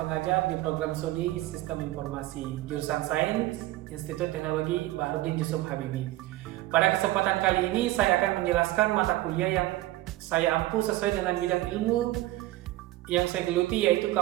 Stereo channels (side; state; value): left; quieter; 16.9 dB